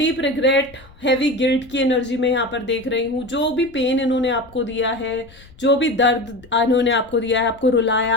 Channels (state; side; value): noise; left; rumble, 24 dB below the sound